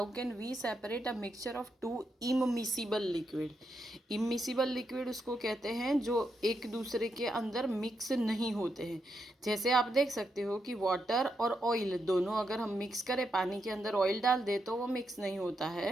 can we separate a mixture of two immiscible liquid? Immiscible liquid उसको कहते हैं जो एक दूसरे के अंदर मिक्स नहीं होते हैं। जैसे आप देख सकते हो कि वाटर और ऑयल दोनों अगर हम मिक्स करें, पानी के अंदर ऑयल डाल दे तो वो मिक्स नहीं होता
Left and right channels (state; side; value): normal; both; correlation 0.82